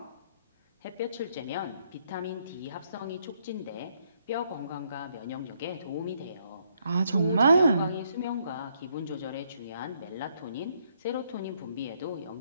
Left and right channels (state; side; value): inverted; both; correlation -0.72